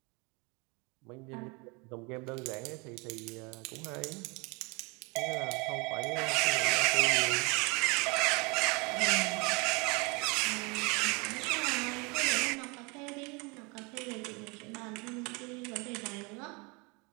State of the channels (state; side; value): quieter; left; 28.8 dB